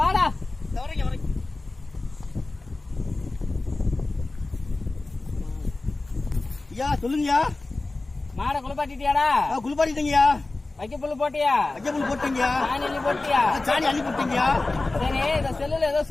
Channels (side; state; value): right; quieter; 3.2 dB